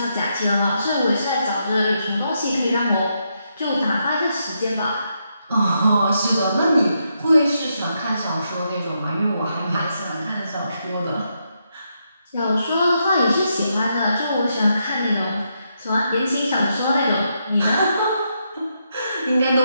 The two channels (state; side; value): inverted; both; correlation -0.80